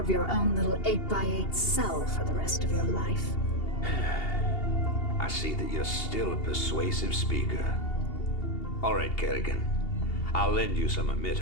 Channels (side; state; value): right; late; 2.8 ms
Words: your own little 8x8 cell for the rest of your life. I see that you're still a persuasive speaker. All right, Kerrigan. I'll lend you some